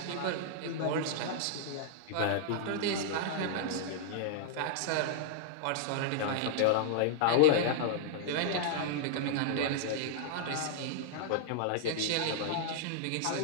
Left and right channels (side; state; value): both; different; correlation -0.01